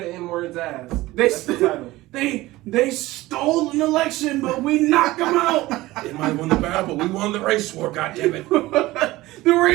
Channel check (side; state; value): left; quieter; 18.4 dB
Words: N-word's ass. They That's the title. they stole an election, but we knocked them out. They might have won the battle, but we won the race war. God damn it! The